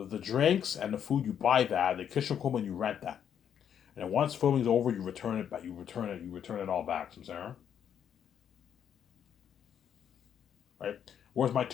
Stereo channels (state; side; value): quieter; right; 8.8 dB